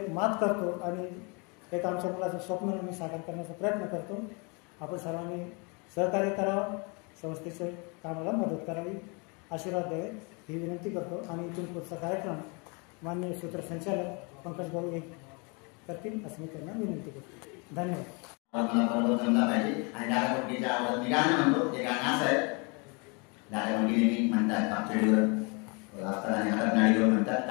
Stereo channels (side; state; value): right; quieter; 31.7 dB